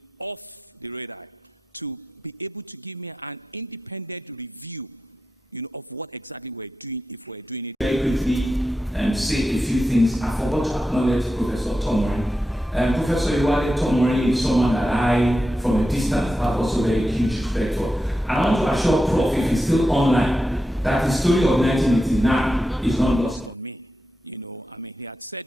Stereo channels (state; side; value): normal; both; correlation 0.89